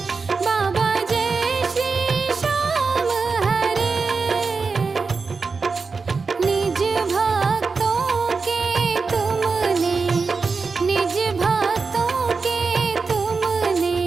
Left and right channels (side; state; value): left; quieter; 4.6 dB